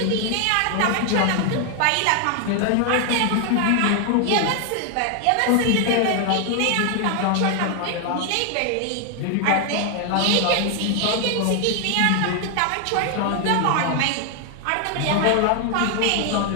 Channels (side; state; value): both; different; correlation 0.00